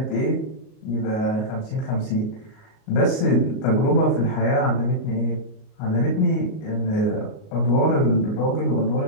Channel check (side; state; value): right; late; 38 ms